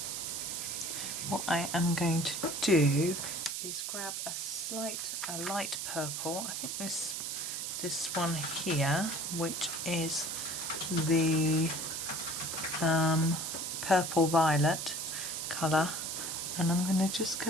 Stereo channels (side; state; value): right; noise; hiss, 3 dB below the sound